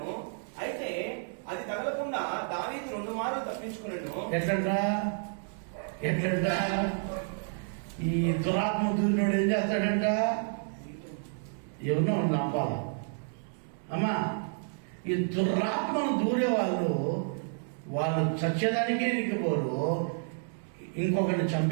అయితే అది తగలకుండా దావీదు 2 మార్లు తప్పించుకున్నాను. ఎట్లంట ఈ దురాత్మ దూరినోడు ఏం చేస్తాడంట? ఎవరినో నమ్మాల అమ్మా. ఈ దురాత్మను దూరే వాళ్ళు చచ్చేదానికి ఎనికిపోరు, ఇంకొకరిని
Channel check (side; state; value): left; silent; digital silence